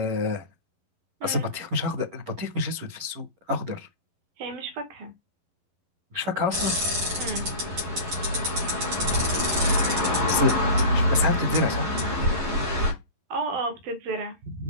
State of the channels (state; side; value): late; left; 11 ms